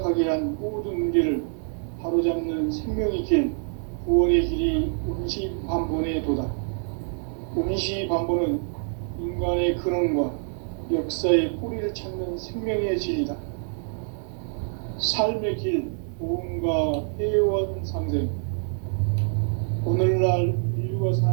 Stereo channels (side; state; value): left; silent; 56 dB below the other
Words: 한 모든 문제를 바로잡는 생명의 길, 구원의 길이 운시반본의 도다. 운시반본은 인간의 근원과 역사의 뿌리를 찾는 생명의 진리다. 삶의 길, 보험과 회원 상생. 오늘날 인류가